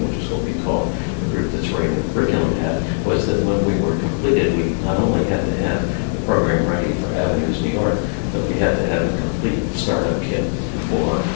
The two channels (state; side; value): silent; right; 66 dB below the other